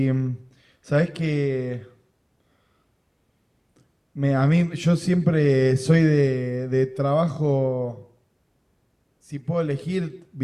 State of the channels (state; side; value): identical; both; correlation 1.00